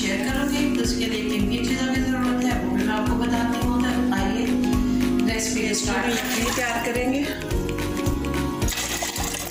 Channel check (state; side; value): identical; both; correlation 1.00